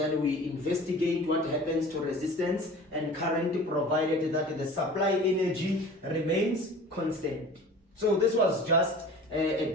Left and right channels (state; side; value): normal; both; correlation 0.41